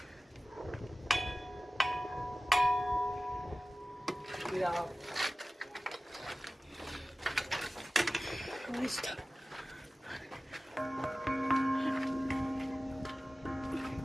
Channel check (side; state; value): both; normal; correlation 0.97